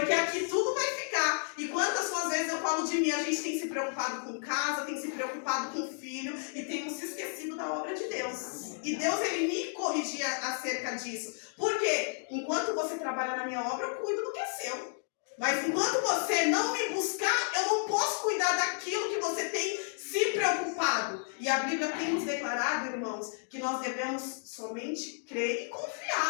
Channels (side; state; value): right; silent; 56 dB below the other